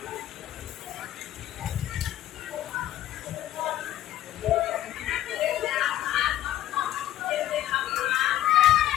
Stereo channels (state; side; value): quieter; right; 13.0 dB